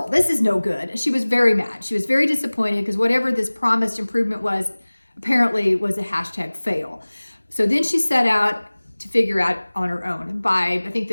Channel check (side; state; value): both; inverted; correlation -1.00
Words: This is no good. She was very mad. She was very disappointed because whatever this promised improvement was, apparently was a hashtag fail. So then she set out to figure out on her own. By, I think